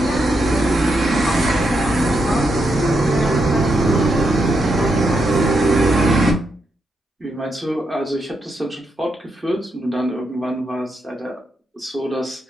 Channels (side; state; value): both; normal; correlation 0.82